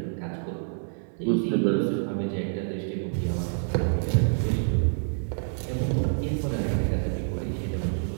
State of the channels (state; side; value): silent; left; 60 dB below the other